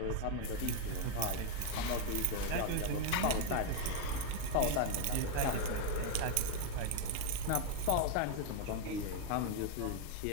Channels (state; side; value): different; both; correlation 0.01